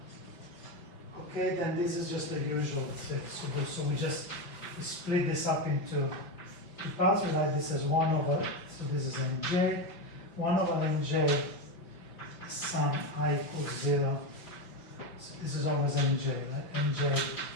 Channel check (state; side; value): late; right; 5.8 ms